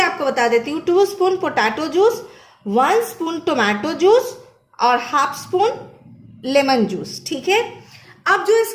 बता देती हूँ, 2 spoon potato juice, 1 spoon tomato juice और हाफ स्पून लेमन जूस, ठीक है। अब जो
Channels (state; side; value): identical; both; correlation 1.00